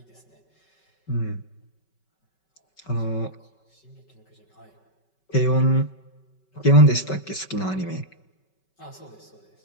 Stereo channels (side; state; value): right; late; 5.3 ms